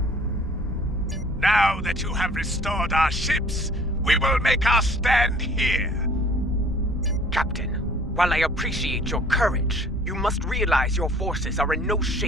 Now that you have restored our ships, we will make our stand here. Captain, while I appreciate your courage, you must realize your forces are in no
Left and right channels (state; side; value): normal; both; correlation 0.53